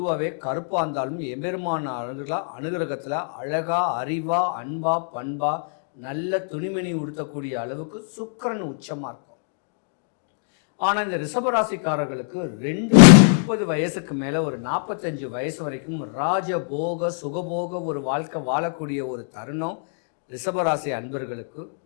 கருப்பாக இருந்தாலும் எம்பெருமான அனுகிரகத்தில் அழகாக அறிவாக அன்பாக பண்பாக நல்ல துணிமணி உடுத்தக்கூடிய அளவுக்கு சுக்கிரன் உச்சமாக இருக்கும். ஆனால் இந்த ரிஷபராசிக்காரர்களுக்கு 30 வயசுக்கு மேலே ஒரு 45 வயசு வரைக்கும் ராஜபோக சுகபோக ஒரு வாழ்க்கை வாழக்கூடிய ஒரு தருணம் ரிஷபராசி அன்பர்களுக்கு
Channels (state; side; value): silent; right; digital silence